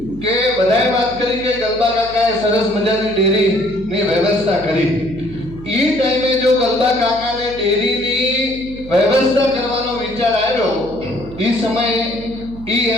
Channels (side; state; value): right; noise; hum, 16 dB below the sound